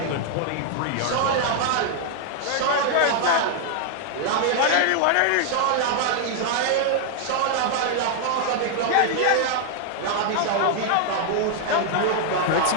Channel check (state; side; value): different; both; correlation 0.00